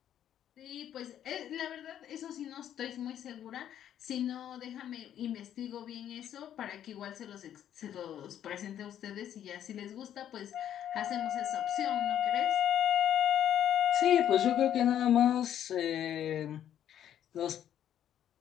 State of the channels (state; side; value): quieter; right; 10.4 dB